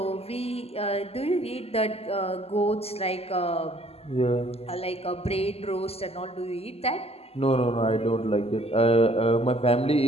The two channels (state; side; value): late; right; 0.29 ms